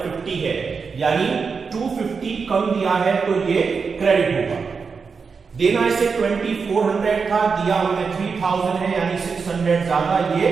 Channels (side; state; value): left; quieter; 5.3 dB